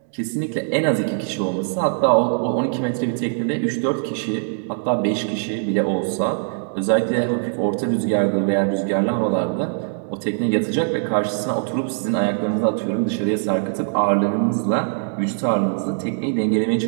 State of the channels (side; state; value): left; silent; digital silence